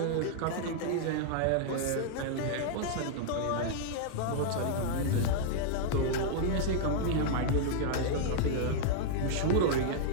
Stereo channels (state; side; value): different; both; correlation -0.01